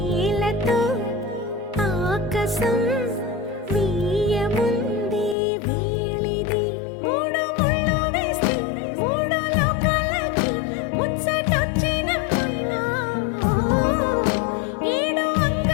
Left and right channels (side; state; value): right; drops out; at 5.4 s